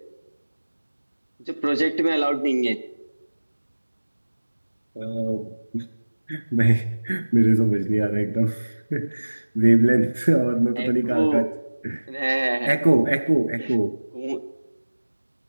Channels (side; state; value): both; inverted; correlation -1.00